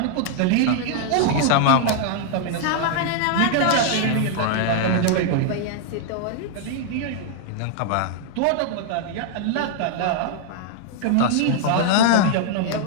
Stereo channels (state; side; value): different; both; correlation -0.01